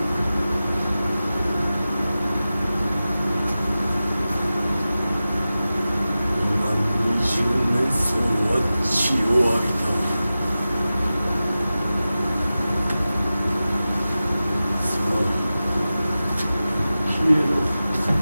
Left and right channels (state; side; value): inverted; both; correlation -0.95